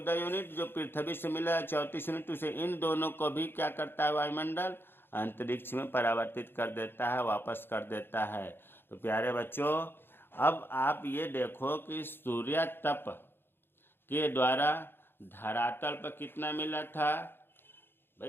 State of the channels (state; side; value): late; right; 0.10 ms